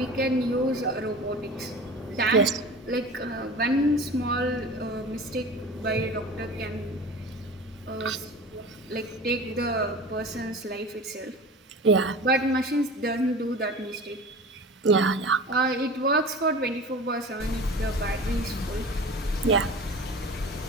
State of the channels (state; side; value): normal; both; correlation 0.36